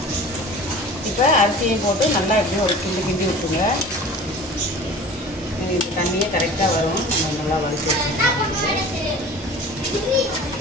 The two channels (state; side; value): normal; both; correlation 0.40